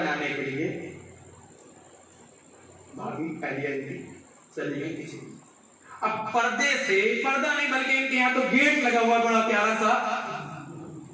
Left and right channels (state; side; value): identical; both; correlation 1.00